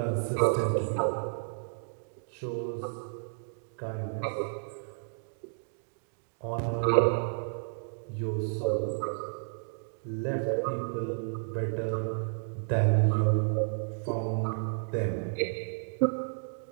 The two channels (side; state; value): left; silent; digital silence